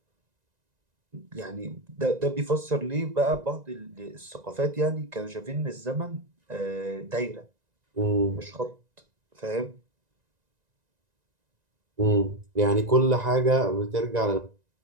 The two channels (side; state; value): left; late; 1.9 ms